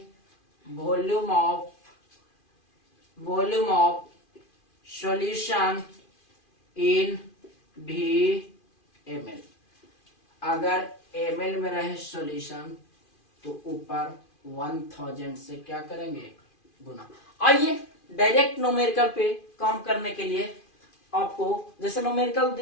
volume of solution in ml। अगर ml में रहे सॉल्यूशन तो ऊपर 1000 से क्या करेंगे, गुना। आइए डायरेक्ट न्यूमेरिकल पे काम करने के लिए आपको जैसे न्यूमेरिकल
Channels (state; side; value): late; right; 2.4 ms